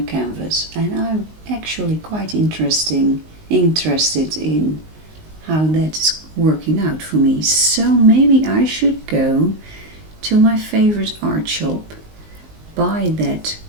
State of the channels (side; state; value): left; late; 19 ms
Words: canvas, and I'm actually quite interested in how that's working out for me. So maybe I should go to my favorite art shop, buy that